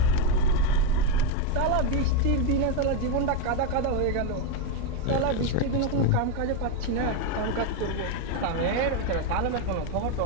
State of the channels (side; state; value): both; different; correlation 0.03